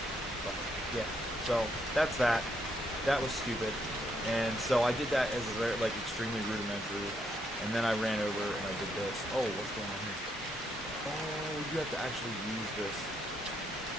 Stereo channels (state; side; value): normal; both; correlation 0.75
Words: Yeah, so that's that. That was stupid. And so I did that as a very, extremely rudimentary. And then I ran over and I did this. Oh, what's going on here? Oh, you have to actually use this.